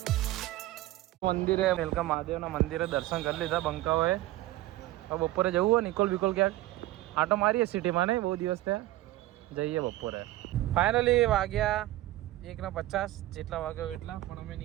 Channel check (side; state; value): left; quieter; 16.4 dB